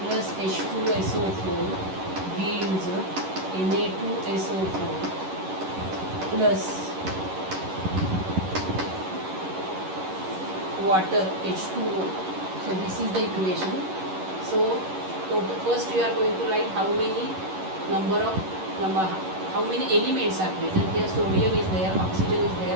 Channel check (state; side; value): late; left; 11 ms